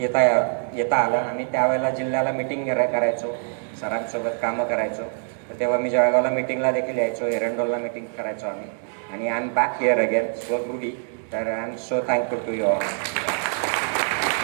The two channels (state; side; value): silent; left; digital silence